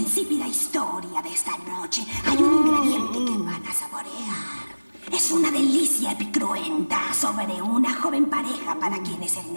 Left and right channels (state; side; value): inverted; both; correlation -1.00